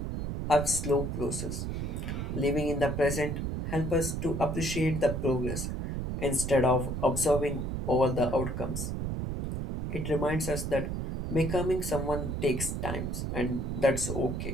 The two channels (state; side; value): noise; right; rumble, 3 dB below the sound